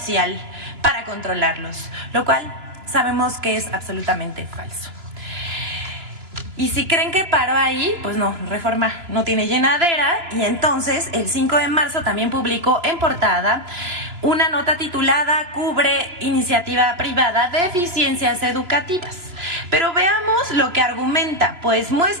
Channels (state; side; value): late; left; 2.9 ms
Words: para controlarlos, lo cual sabemos que es absolutamente falso. Y si creen que paró ahí, pues no, Reforma no tiene llenadera, y entonces el 5 de marzo también publicó en portada una nota titulada "Cubre iniciativa privada de eficiencias educativas". Pero veamos lo que argumenta, pues